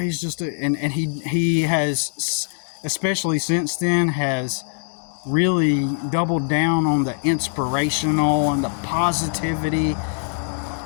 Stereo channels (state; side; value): silent; right; digital silence